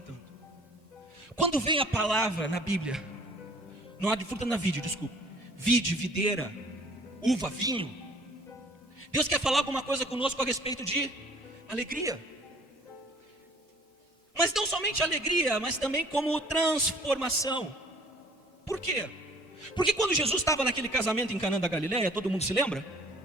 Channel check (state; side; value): normal; both; correlation 0.54